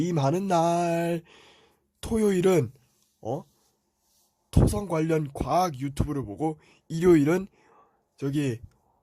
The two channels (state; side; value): identical; both; correlation 1.00